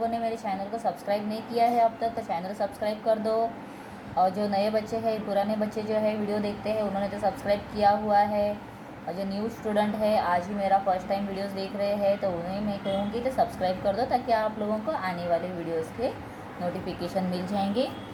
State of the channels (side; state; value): both; identical; correlation 1.00